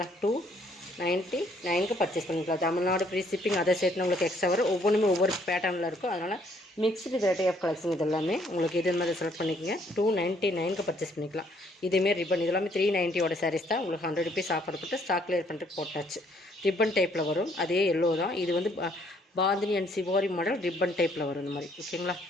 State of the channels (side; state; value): both; normal; correlation 0.66